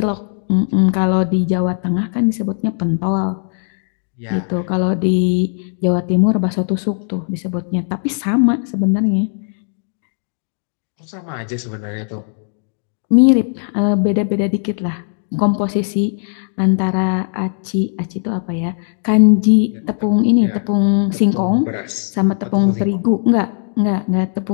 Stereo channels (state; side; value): silent; right; digital silence